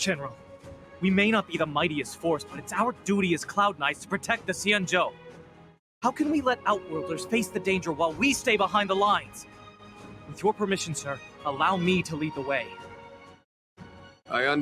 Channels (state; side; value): identical; both; correlation 1.00